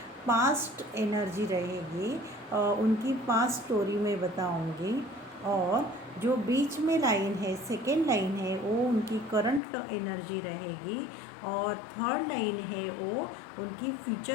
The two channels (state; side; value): drops out; right; at 9.6 s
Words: पास्ट एनर्जी रहेगी, उनकी पास्ट स्टोरी में बताऊंगी। और जो बीच में लाइन है, सेकेंड लाइन है, वो उनकी करंट एनर्जी रहेगी और थर्ड लाइन है वो उनकी